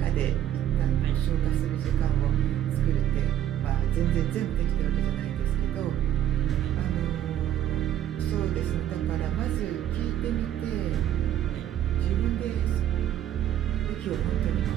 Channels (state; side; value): quieter; left; 11.5 dB